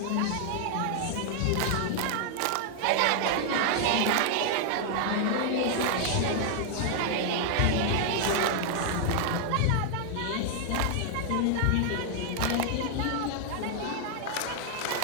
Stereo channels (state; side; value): different; both; correlation 0.00